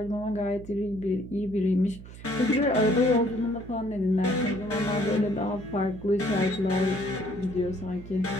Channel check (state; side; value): noise; right; hum, 15 dB below the sound